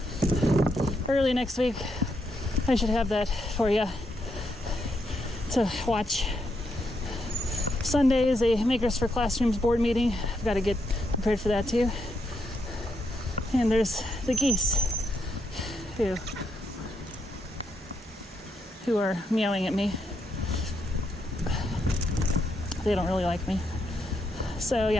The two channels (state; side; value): normal; both; correlation 0.80